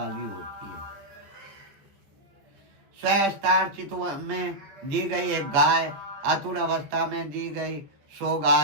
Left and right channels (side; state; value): left; late; 14 ms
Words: होती है। स्वस्तार्चित में दी गई एक गाय, आतुर अवस्था में दी गई 100